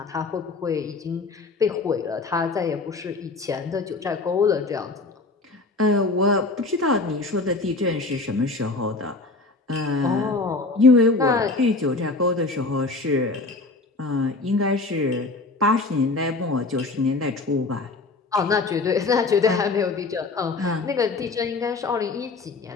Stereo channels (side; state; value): right; quieter; 3.5 dB